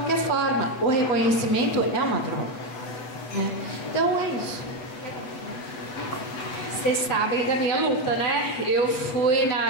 forma. O reconhecimento é uma troca, né? Então, é isso. Vocês sabem da minha luta, né? Eu fui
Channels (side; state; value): right; late; 7.9 ms